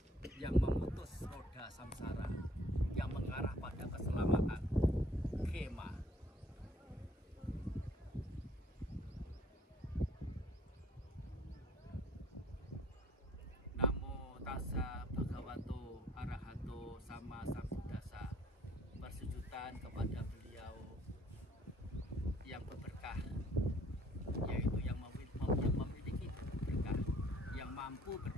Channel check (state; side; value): normal; both; correlation 0.60